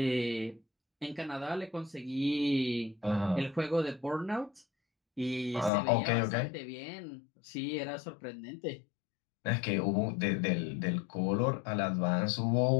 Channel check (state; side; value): drops out; right; at 5.7 s